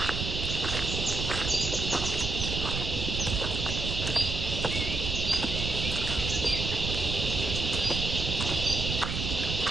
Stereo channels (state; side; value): noise; right; rumble, 3 dB below the sound